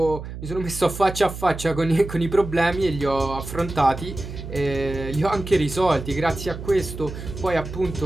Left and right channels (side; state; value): right; noise; hum, 10 dB below the sound